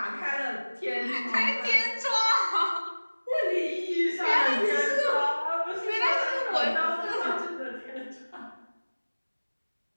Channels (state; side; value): inverted; both; correlation -1.00